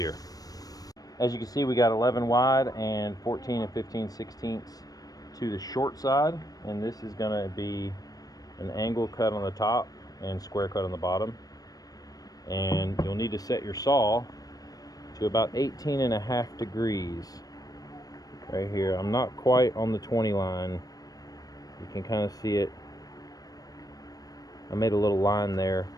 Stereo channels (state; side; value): late; right; 0.18 ms